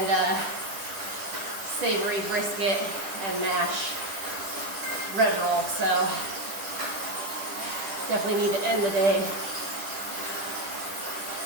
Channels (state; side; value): late; left; 10 ms